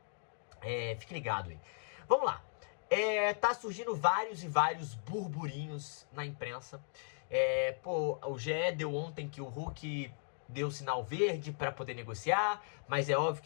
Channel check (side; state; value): right; silent; digital silence